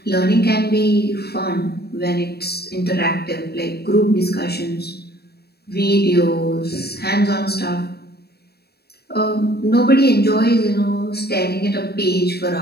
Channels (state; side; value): late; right; 0.47 ms